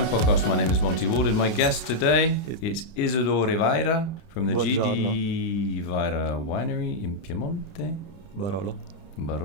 Podcast. My name is Monty Waldin. My guest today is Isidoro Vajra from the GD Vajra winery in Piemonte. Barolo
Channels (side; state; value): right; late; 30 ms